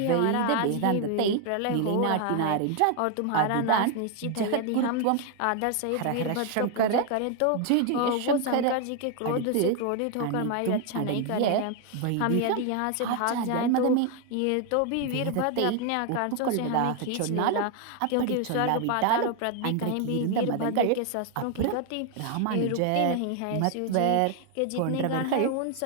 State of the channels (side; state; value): both; different; correlation 0.00